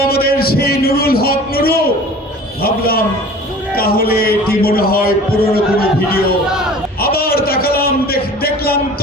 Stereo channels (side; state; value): both; normal; correlation 0.43